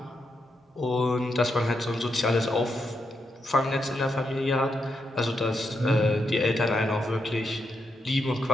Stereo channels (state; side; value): normal; both; correlation 0.82